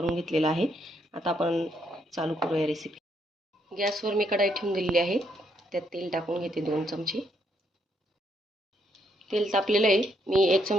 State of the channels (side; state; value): both; normal; correlation 0.74